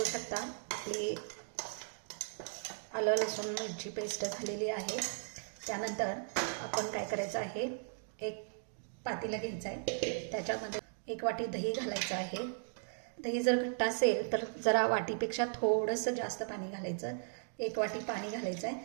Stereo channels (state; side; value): silent; left; digital silence